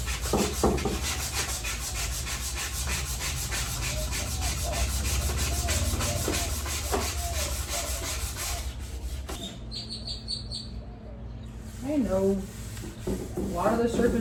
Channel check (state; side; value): identical; both; correlation 1.00